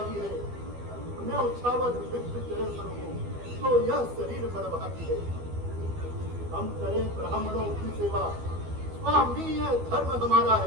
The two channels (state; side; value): late; left; 12 ms